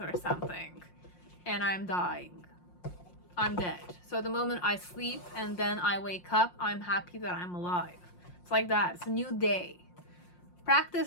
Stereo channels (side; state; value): right; late; 5.6 ms